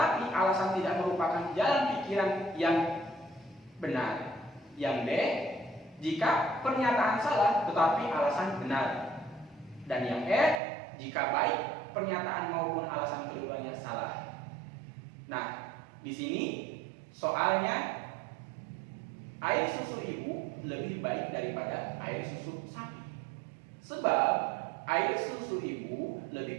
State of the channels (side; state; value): left; drops out; at 10.6 s